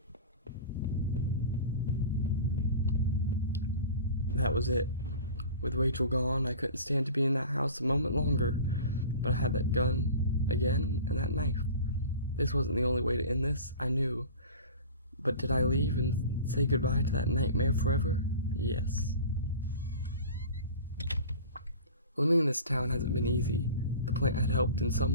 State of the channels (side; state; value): both; inverted; correlation -0.38